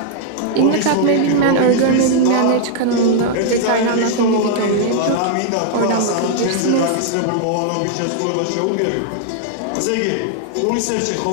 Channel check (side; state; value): both; different; correlation -0.01